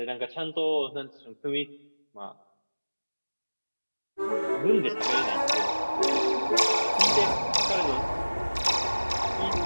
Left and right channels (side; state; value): both; inverted; correlation -1.00